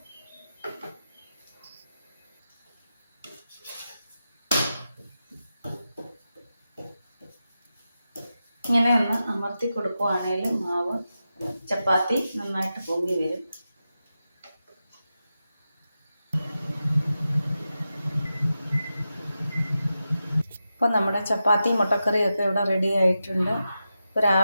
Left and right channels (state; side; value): inverted; both; correlation -0.91